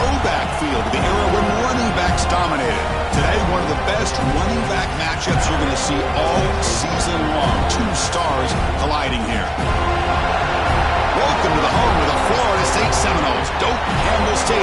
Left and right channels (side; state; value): both; identical; correlation 1.00